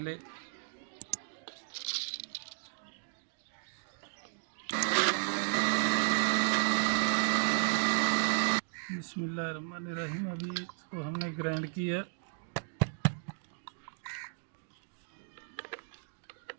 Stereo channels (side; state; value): left; silent; 55 dB below the other